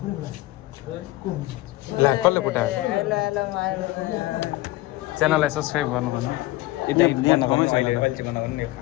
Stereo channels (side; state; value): right; quieter; 18.1 dB